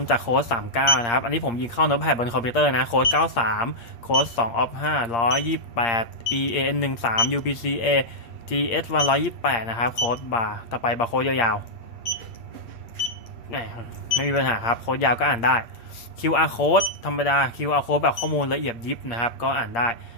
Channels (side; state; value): right; late; 8.6 ms